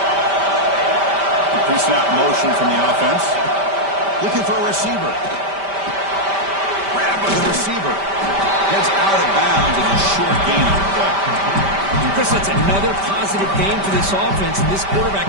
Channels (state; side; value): late; left; 5.1 ms